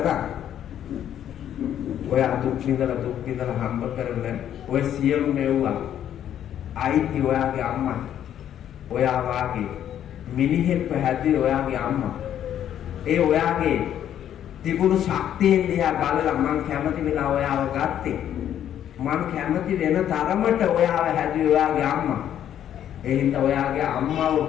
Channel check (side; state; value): right; quieter; 10.4 dB